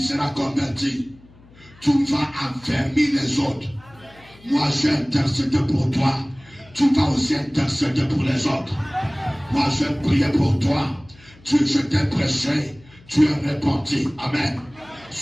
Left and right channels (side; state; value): left; noise; hum, 25 dB below the sound